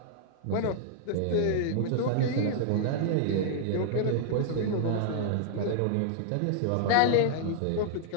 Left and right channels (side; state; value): both; different; correlation -0.01